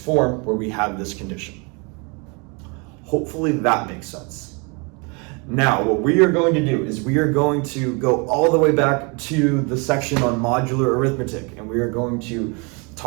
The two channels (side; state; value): left; quieter; 31.7 dB